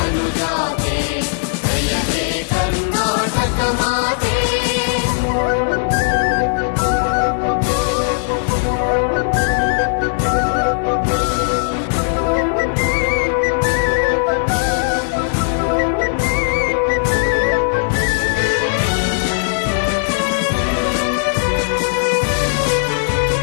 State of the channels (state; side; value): silent; right; 56 dB below the other